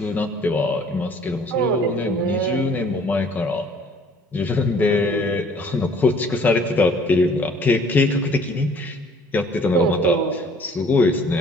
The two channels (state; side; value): normal; both; correlation 0.56